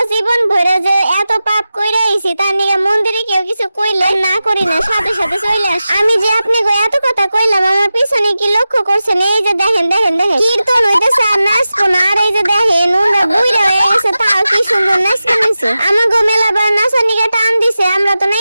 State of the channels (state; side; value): inverted; both; correlation -0.93